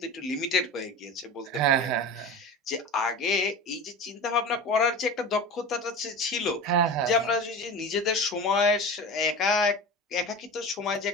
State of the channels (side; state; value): both; normal; correlation 0.31